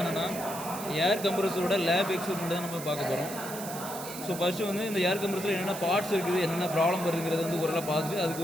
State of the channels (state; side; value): noise; right; hiss, 10 dB below the sound